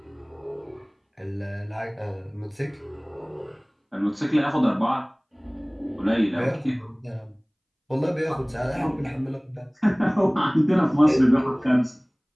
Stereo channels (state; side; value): identical; both; correlation 1.00